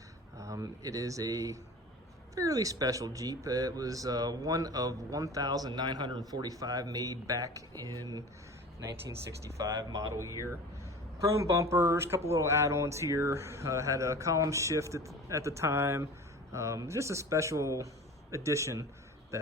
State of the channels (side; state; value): both; normal; correlation 0.38